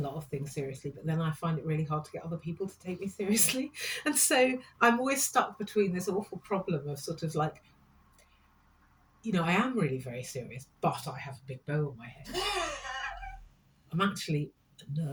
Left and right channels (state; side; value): identical; both; correlation 1.00